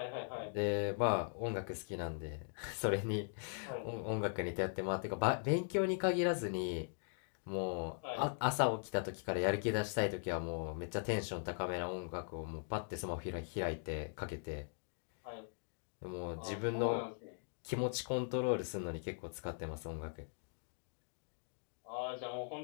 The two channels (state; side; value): silent; right; digital silence